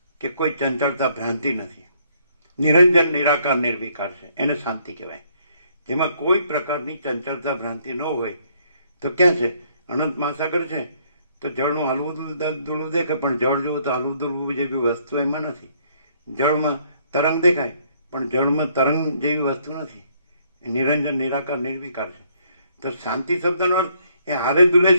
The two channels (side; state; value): both; inverted; correlation -0.67